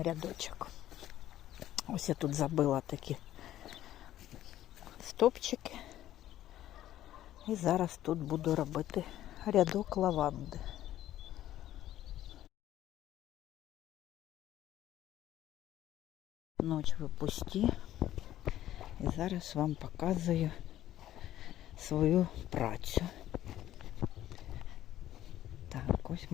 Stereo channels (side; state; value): right; quieter; 13.0 dB